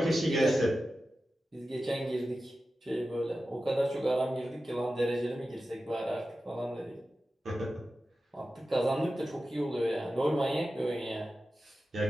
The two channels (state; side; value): normal; both; correlation 0.93